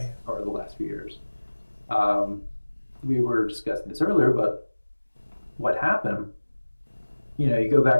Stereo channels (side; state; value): both; inverted; correlation -1.00